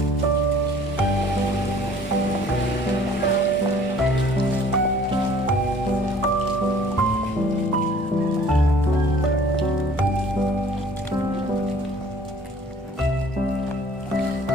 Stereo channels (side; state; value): both; normal; correlation 0.53